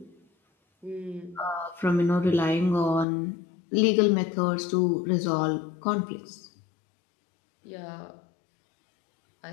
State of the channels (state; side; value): drops out; right; at 3.1 s